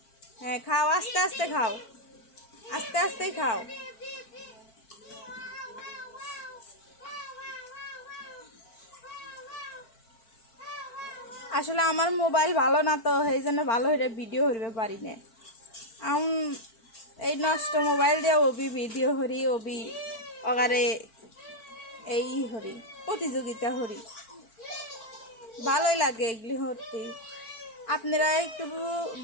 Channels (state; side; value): late; right; 4.5 ms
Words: হ্যাঁ খাও, আস্তে আস্তে খাও, আস্তে আস্তে খাও। আসলে আমার মোবাইল ভালো না তো, এই জন্য ভালো হয়ে ভিডিও হইতে পারি না। এই নষ্ট মোবাইল দিয়ে ওবি ভিডিও হরি, ওবি অগারে এই হরি প্রতিযোগিতা হরি, ভালোই লাগে এগুলি হতে। আপনারা একটু